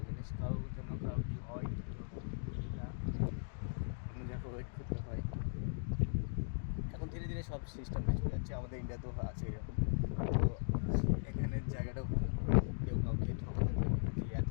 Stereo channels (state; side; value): silent; right; digital silence